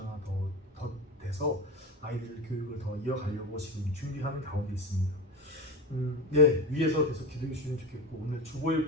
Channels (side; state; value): both; normal; correlation 0.22